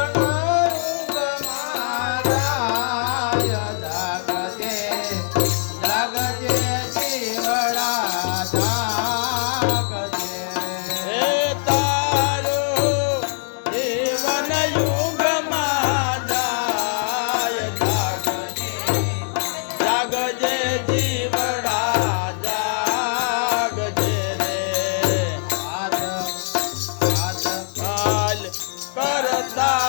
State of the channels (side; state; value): right; silent; 63 dB below the other